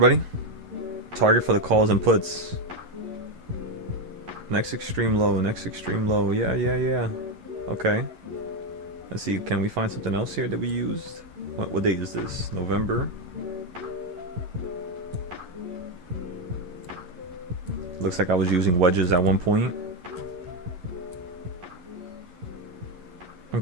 Target for the calls and puts. Next extreme low, next extreme low. Yeah. Okay. Let's see, can we find something else here that we used? What date is this? November. Looks like I was using wedges at one point.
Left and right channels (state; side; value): late; left; 11 ms